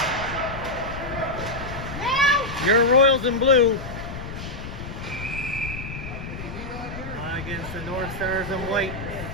Your Royals in blue against the North Stars in white.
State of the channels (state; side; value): noise; left; rumble, 9 dB below the sound